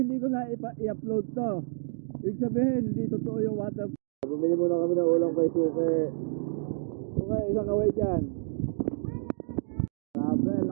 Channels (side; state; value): left; silent; digital silence